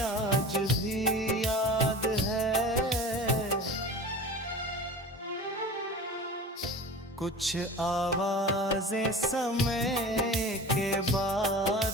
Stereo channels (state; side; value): normal; both; correlation 0.36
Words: आज भी याद है। कुछ आवाजें समय के